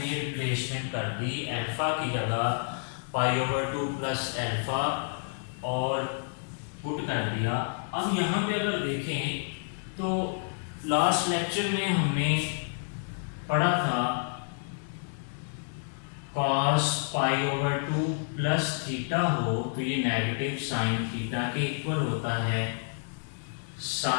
रिप्लेसमेंट कर दी, अल्फा की जगह पाई ओवर 2 प्लस अल्फा और पुट कर दिया। अब यहाँ पे अगर देखें तो लास्ट लेक्चर में हमने पढ़ा था cos pi over 2 plus theta हो तो ये नेगेटिव साइन थीटा के इक्वल होता है,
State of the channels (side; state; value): right; silent; 58 dB below the other